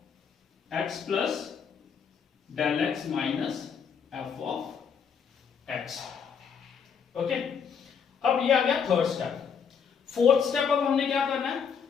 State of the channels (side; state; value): right; quieter; 6.8 dB